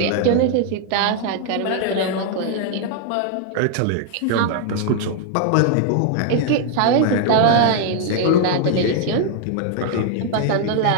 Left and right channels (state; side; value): different; both; correlation 0.00